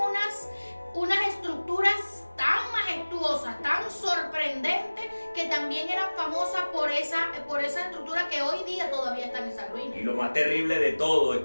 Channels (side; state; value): both; inverted; correlation -1.00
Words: estructuras tan majestuosas, tan sorprendentes, que también eran famosas por esa estructura, que hoy día todavía están en esa ruina. Y lo más terrible de todo es